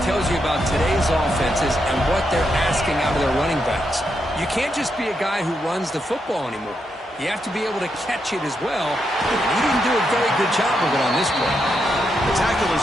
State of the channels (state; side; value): normal; both; correlation 0.82